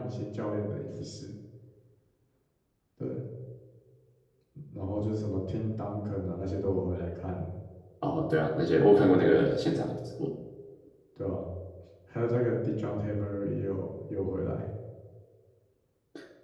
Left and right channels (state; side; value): identical; both; correlation 1.00